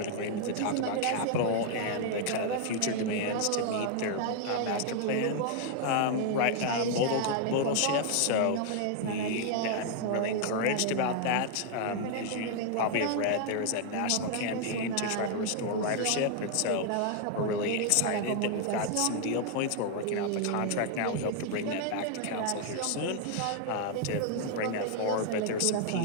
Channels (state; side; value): different; both; correlation 0.00